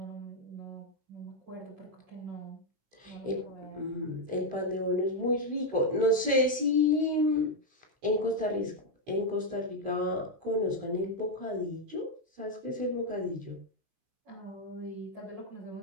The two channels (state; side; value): late; left; 16 ms